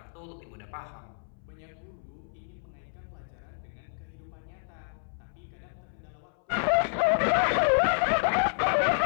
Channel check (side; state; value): right; silent; 58 dB below the other